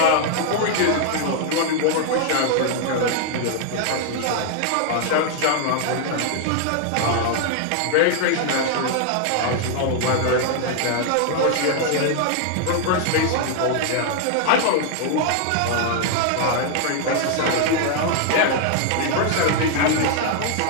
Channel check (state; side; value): different; both; correlation 0.00